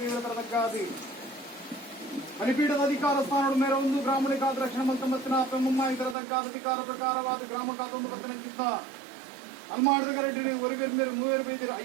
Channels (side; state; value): left; drops out; at 6.2 s